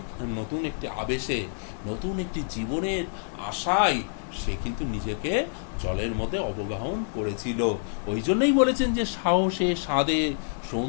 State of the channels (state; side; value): silent; right; digital silence